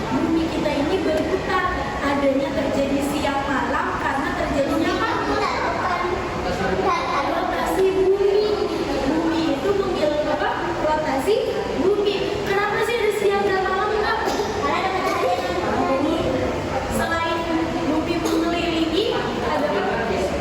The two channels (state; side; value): identical; both; correlation 1.00